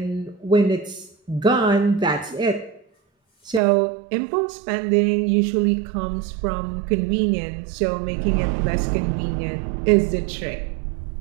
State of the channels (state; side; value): drops out; left; at 3.6 s